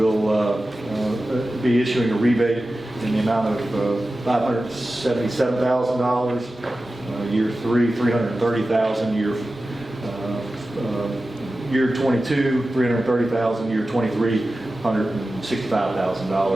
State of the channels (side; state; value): both; normal; correlation 0.94